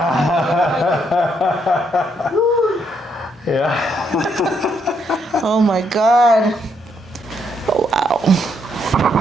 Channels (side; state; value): both; normal; correlation 0.74